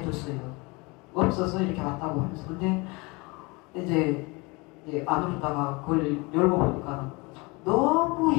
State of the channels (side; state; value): right; quieter; 26.4 dB